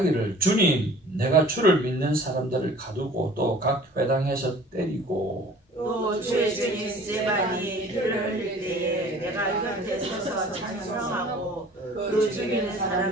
주님 내가 주를 믿는 사람들을 가두고 또 각 회당에서 때리고 또 주의 주인 스데반이 피를 흘릴 때에 내가 곁에 서서 찬송하고 그 죽이는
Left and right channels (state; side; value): normal; both; correlation 0.48